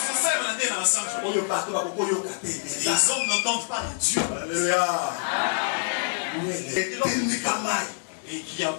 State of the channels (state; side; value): silent; right; digital silence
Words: Les hommes n'entendent pas Dieu. Alléluia. Et qui a